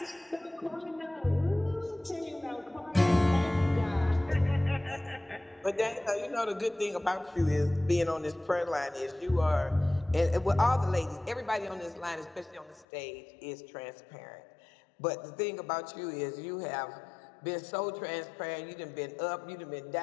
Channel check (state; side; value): drops out; right; at 12.9 s